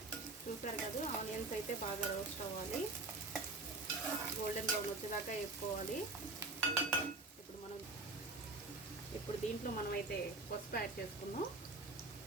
చూసారు కదా, ఆనియన్స్ అయితే బాగా రోస్ట్ అవ్వాలి, గోల్డెన్ బ్రౌన్ వచ్చేదాకా వేసుకోవాలి. ఇప్పుడు దీంట్లో మనమైతే పసుపు యాడ్ చేసుకుందాం.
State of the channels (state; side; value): quieter; left; 3.3 dB